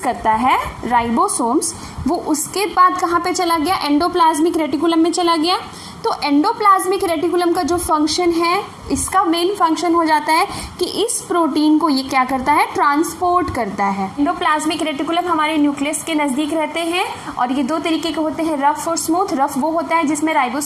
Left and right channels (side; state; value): both; identical; correlation 1.00